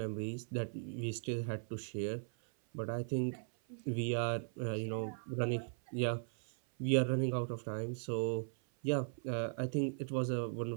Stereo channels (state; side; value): silent; left; 52 dB below the other